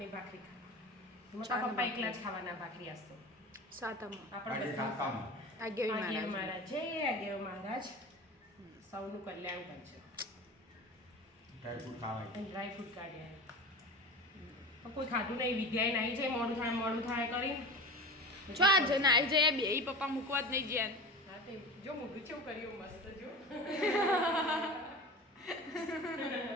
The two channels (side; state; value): both; normal; correlation 0.32